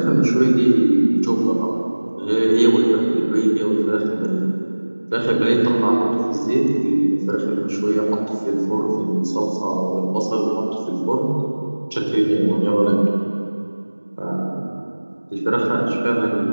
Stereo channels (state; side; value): inverted; both; correlation -1.00